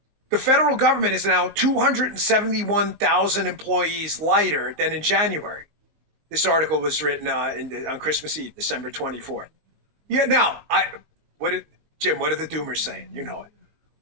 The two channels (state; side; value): late; left; 19 ms